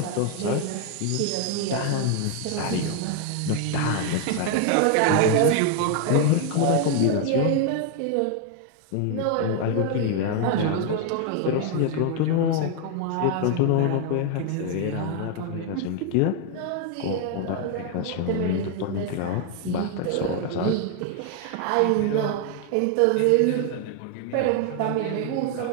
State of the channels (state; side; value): different; both; correlation 0.00